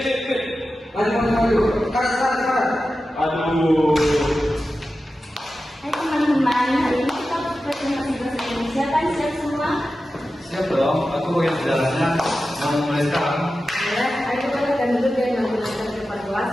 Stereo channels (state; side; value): normal; both; correlation 0.93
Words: Hai teman-teman, hari ini kita presentasi bahasa Indonesia kan siap semua? Siap dong, aku bagian sejarahnya. Yang mulai sekarang. Ayo kita akan duduk dan menggunakan tempat